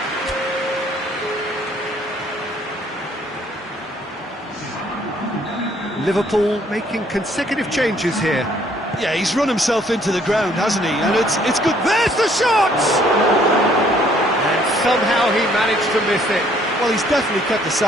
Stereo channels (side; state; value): both; normal; correlation 0.63